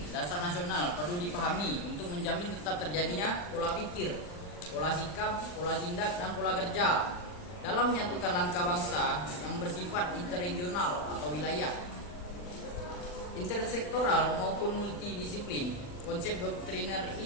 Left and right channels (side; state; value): right; late; 40 ms